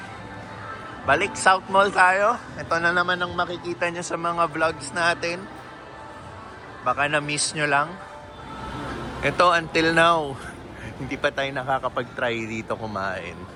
Balik South Mall tayo. Ito na naman ang makikita nyo sa mga vlogs natin. Baka na-miss nyo lang. Ito, until now, hindi pa tayo nakakapag-try dito kumain.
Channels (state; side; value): identical; both; correlation 1.00